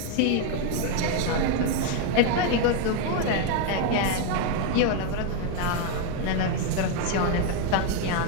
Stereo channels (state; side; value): different; both; correlation 0.01